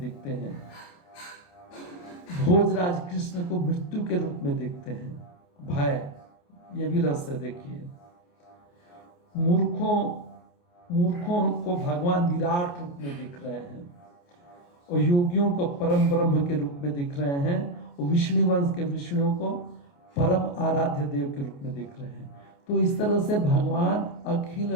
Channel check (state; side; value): late; right; 28 ms